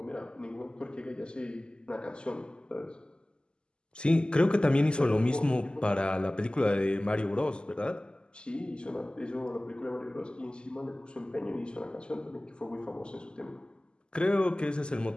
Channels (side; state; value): right; late; 0.048 ms